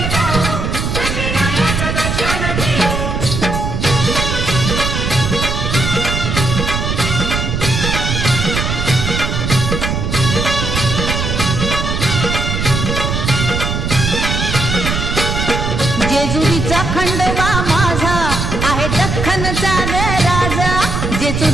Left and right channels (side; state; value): right; noise; rumble, 2 dB below the sound